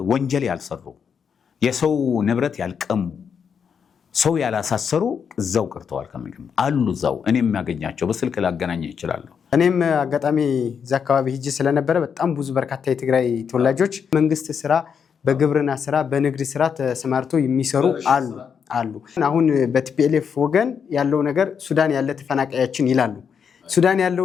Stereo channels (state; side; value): quieter; right; 6.9 dB